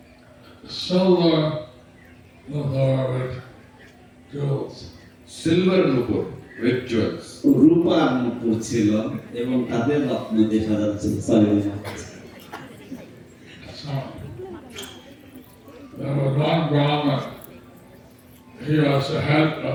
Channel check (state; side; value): identical; both; correlation 1.00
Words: Silver nupur with jewels. রূপার নুপুর ছিল এবং তাদের রত্ন দিয়ে সাজানো ছিল There was one Brahmin, he was the head of